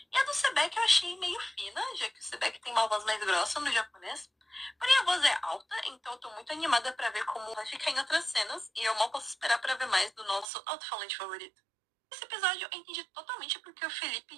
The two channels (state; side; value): drops out; left; at 10.5 s